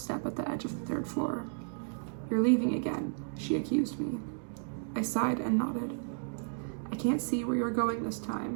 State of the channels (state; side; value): silent; left; digital silence